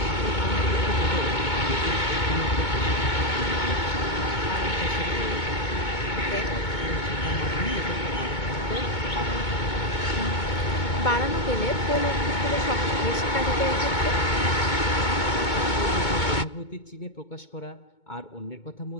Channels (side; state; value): right; late; 2.2 ms